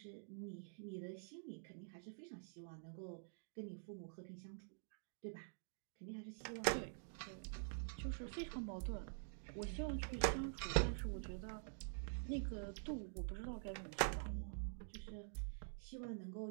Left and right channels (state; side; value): silent; left; digital silence